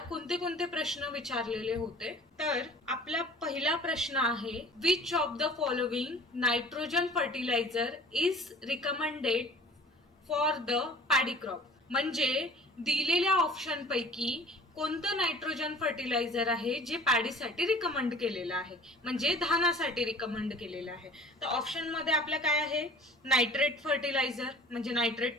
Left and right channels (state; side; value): normal; both; correlation 0.45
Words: कोणते कोणते प्रश्न विचारलेले होते. तर आपला पहिला प्रश्न आहे, which of the following nitrogen fertiliser is recommended for the paddy crop. म्हणजे दिलेल्या ऑप्शन पैकी कोणतं नायट्रोजन फर्टिलायझर आहे जे पॅडीसाठी रिकमेंड केलेलं आहे, म्हणजे धानासाठी रिकमेंड केलेलं आहे. तर ऑप्शन मध्ये आपल्या काय आहे, नायट्रेट फर्टिलायझर म्हणजे